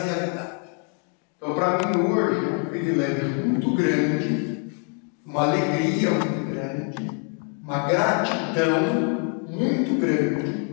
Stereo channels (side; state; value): right; quieter; 38.6 dB